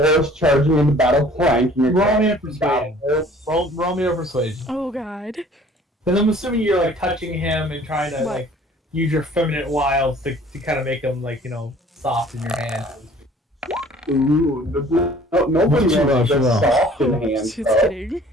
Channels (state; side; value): normal; both; correlation 0.52